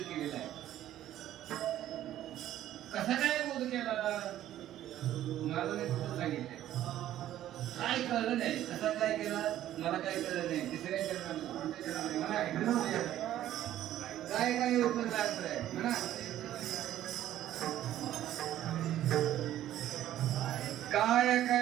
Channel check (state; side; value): quieter; left; 12.6 dB